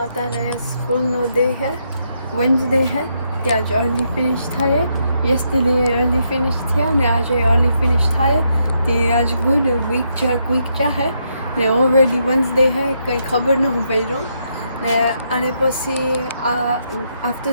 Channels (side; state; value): both; inverted; correlation -0.78